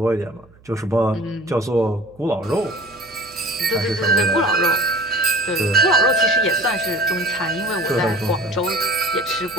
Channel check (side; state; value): right; noise; hum, 27 dB below the sound